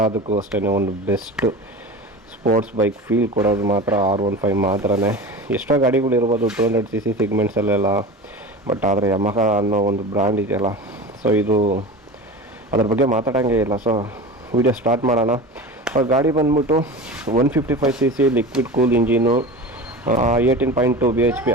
ಅಷ್ಟೇ ಒಂದು ಬೆಸ್ಟ್ ಸ್ಪೋರ್ಟ್ಸ್ ಬೈಕ್ ಫೀಲ್ ಕೊಡೋದು ಮಾತ್ರ R15 ಮಾತ್ರನೇ. ಎಷ್ಟೋ ಗಾಡಿಗಳಿರ್ಬೋದು 200cc ಸಿಗ್ಮೆಂಟ್ಸಲ್ಲೆಲ್ಲ, ಬಟ್ ಆದರೆ ಯಮಹ ಅನ್ನೋ ಒಂದು ಬ್ರ್ಯಾಂಡ್ ಇದೆಯಲ್ಲ, ಸೊ ಇದು ಅದ್ರ ಬಗ್ಗೆ ಮಾತಾಡೋಂಗೆ ಇಲ್ಲ. ಸೊ ವಿಡಿಯೋ ಸ್ಟಾರ್ಟ್ ಮಾಡೋಣ. ಗಾಡಿ ಬಂದ್ಬಿಟ್ಟು 155cc liquid cool engine, 18.2 bhp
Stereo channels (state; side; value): normal; both; correlation 0.31